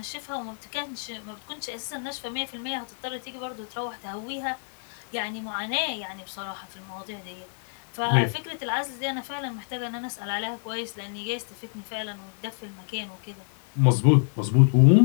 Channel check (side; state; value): right; silent; digital silence